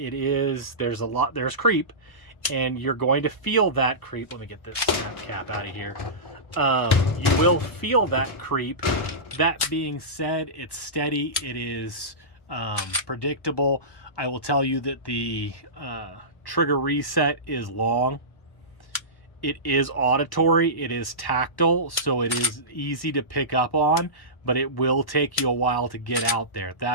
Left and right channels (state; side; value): late; right; 1.1 ms